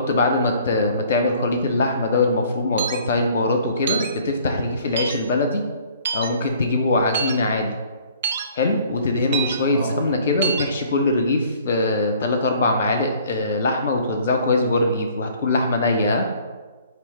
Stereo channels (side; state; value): both; inverted; correlation -0.56